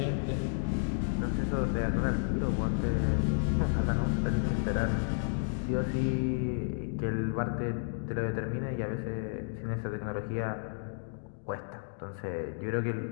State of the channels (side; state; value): right; silent; digital silence